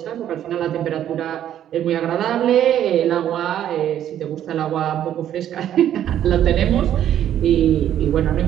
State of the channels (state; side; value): quieter; left; 10.9 dB